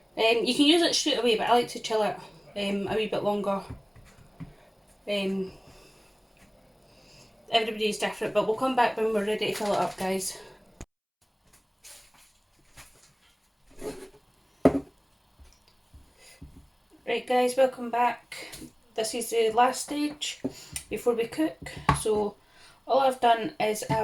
You can use it straight away, but I like to chill it a wee bit longer. Everybody's different, but we'll come back when we're ready to fill it up, guys. Right guys, welcome back. This is the last stage before we cook. So all I've done is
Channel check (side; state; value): both; identical; correlation 1.00